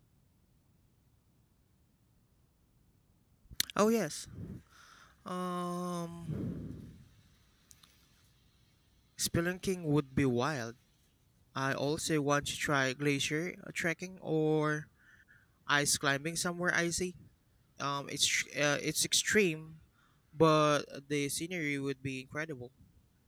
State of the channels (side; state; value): both; identical; correlation 1.00